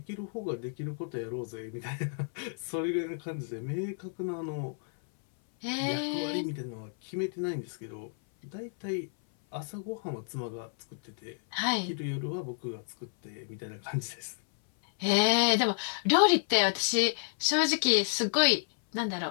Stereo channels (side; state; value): right; silent; 57 dB below the other